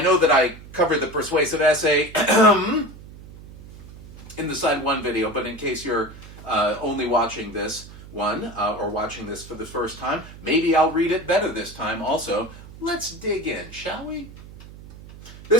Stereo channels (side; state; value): right; noise; hum, 17 dB below the sound